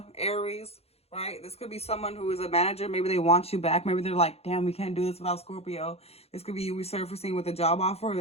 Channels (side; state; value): right; late; 0.29 ms